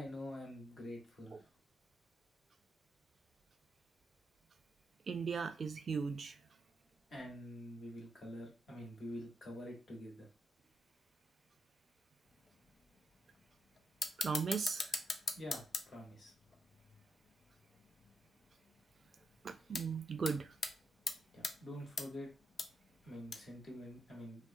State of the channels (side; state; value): both; normal; correlation 0.81